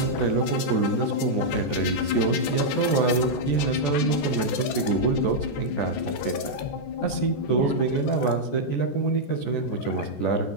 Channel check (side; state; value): right; late; 14 ms